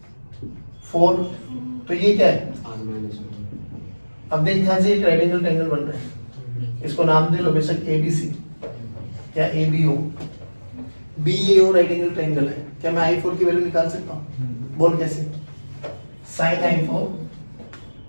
4, तो ये क्या है। अब देख ध्यान से, एक राइट एंगल ट्रायंगल बन रहा है, इसको नाम दे लो बेशक ABC या ABO। BAO right angle triangle है। क्या मैं I4 की वैल्यू निकाल सकता हूँ, बोल कैसे, sin I4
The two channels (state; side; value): inverted; both; correlation -1.00